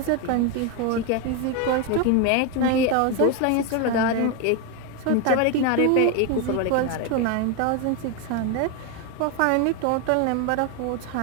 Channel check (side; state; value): both; different; correlation 0.02